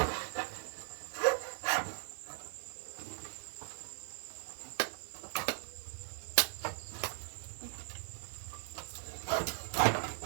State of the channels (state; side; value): silent; left; digital silence